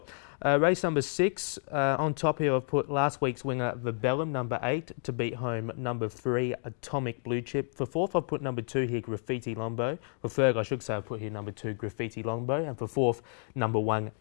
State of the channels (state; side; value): silent; right; 57 dB below the other